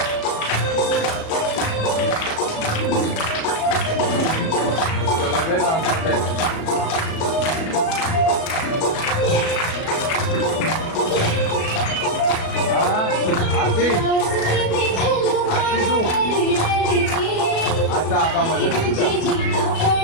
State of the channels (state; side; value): late; right; 37 ms